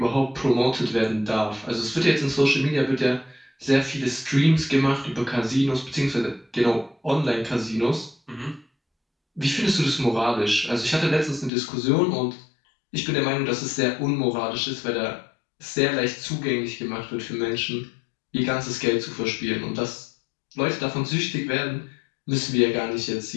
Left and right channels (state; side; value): drops out; right; at 11.5 s